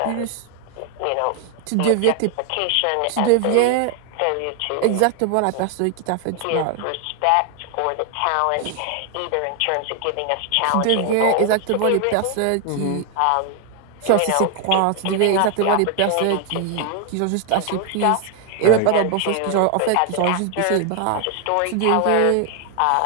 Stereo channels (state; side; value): different; both; correlation 0.00